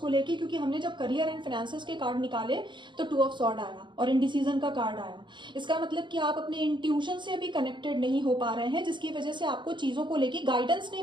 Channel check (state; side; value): late; left; 0.23 ms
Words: लेके, क्योंकि हमने जब करियर एंड फाइनेंसेस के कार्ड निकाले तो टू ऑफ सॉर्ड आया और इनडिसीजन का कार्ड आया। इसका मतलब कि आप अपने इंट्यूशन से अभी कनेक्टेड नहीं हो पा रहे हैं, जिसकी वजह से आपको चीजों को लेके गाइडेंस